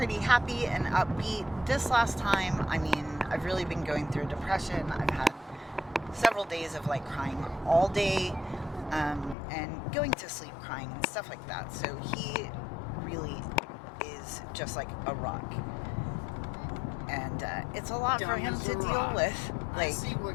happy and upbeat. This last time, I've really been going through depression. I've had several days of crying all day, and going to sleep crying and stuff like that. So he really is just like a rock, and it's a lot for him to deal with. I see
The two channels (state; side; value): drops out; right; at 9.3 s